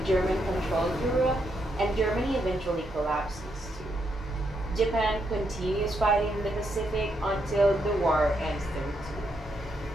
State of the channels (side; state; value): both; normal; correlation 0.79